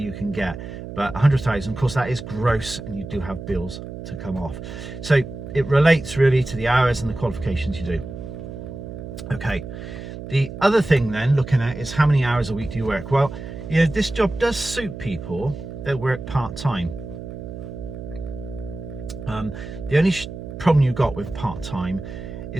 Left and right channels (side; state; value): right; noise; hum, 10 dB below the sound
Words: can get. But 100,000, of course, that is gross, and you do have bills to come off. So it relates really to the hours and the qualifications you do. Okay, the other thing then looking at is how many hours a week do you work? Well, you know, this job does suit people that work part-time. The only problem you've got with part-time